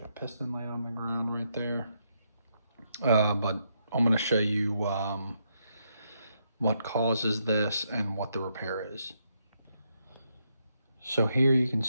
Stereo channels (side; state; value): both; inverted; correlation -0.78